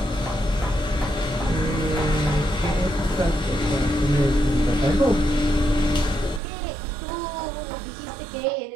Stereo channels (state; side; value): drops out; left; at 6.4 s